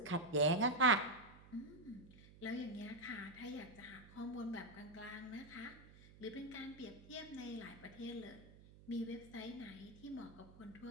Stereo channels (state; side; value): noise; right; hum, 20 dB below the sound